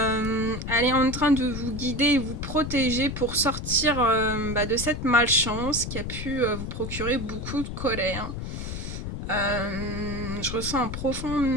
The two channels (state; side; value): noise; left; rumble, 6 dB below the sound